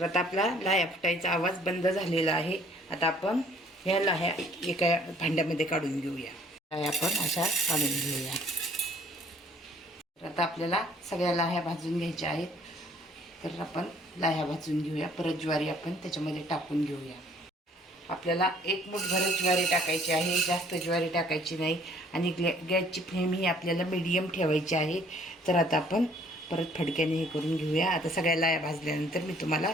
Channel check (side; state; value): both; normal; correlation 0.59